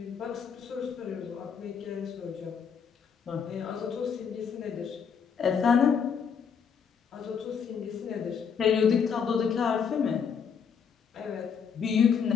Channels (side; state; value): right; quieter; 6.7 dB